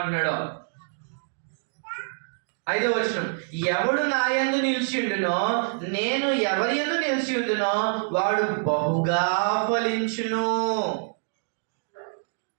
5వ వచనం, ఎవడు నా యందు నిలిచి ఉండునో, నేను ఎవరి యందు నిలిచి ఉండునో వాడు బహుగా ఫలించును.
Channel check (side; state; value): left; silent; digital silence